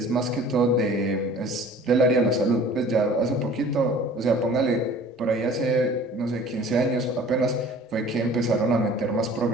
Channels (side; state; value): both; normal; correlation 0.47